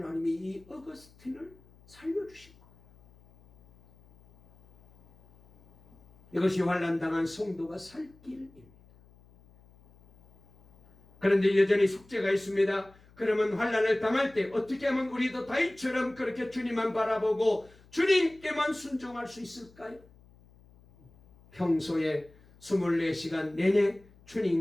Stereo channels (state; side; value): noise; left; hum, 27 dB below the sound